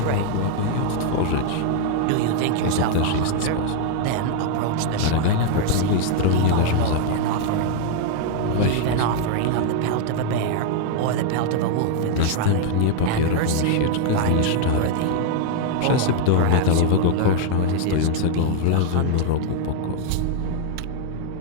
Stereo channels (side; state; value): both; different; correlation 0.00